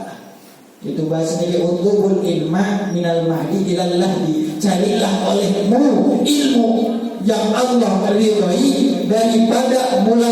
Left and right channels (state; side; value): identical; both; correlation 1.00